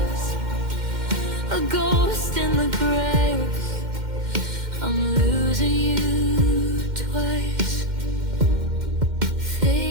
a ghost in the graves. I'm losing you twice,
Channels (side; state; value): left; late; 2.1 ms